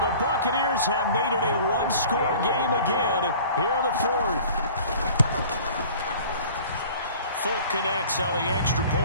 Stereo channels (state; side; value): inverted; both; correlation -0.46